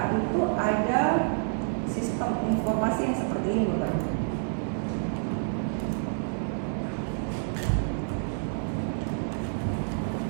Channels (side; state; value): left; silent; digital silence